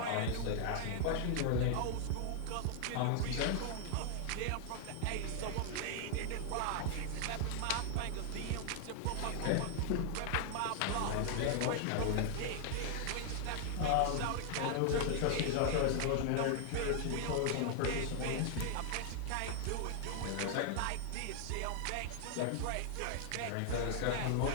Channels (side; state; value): both; different; correlation 0.00